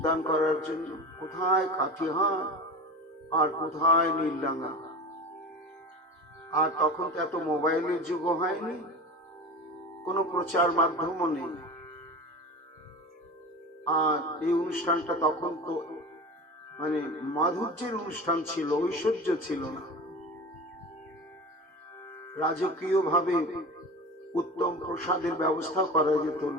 করার জন্য? কোথায় কাঠিহার আর কোথায় নীলডাঙ্গা? আর তখন তো এত মোবাইলের যুগ হয়নি, কোনো প্রচার মাধ্যমও নেই। আর এই অনুষ্ঠানটা তখন তো মানে মাধুর্যের অনুষ্ঠান ছিল, ঐশ্বর্য ছিল না। রাজকীয় ভাবে উত্তম প্রসাদের ব্যবস্থা করা যেত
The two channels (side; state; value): both; normal; correlation 0.31